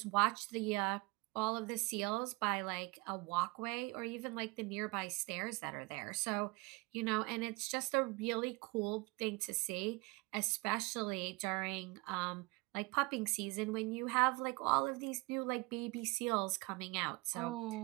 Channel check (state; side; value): quieter; left; 25.8 dB